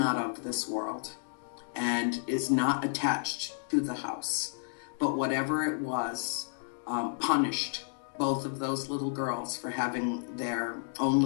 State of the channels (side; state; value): right; silent; digital silence